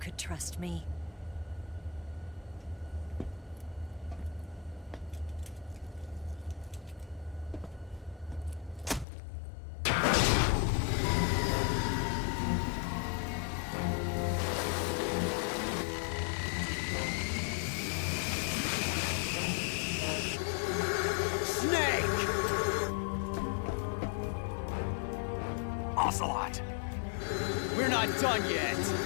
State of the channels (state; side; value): drops out; right; at 9.1 s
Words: trust me. Ocelot! We're not done yet!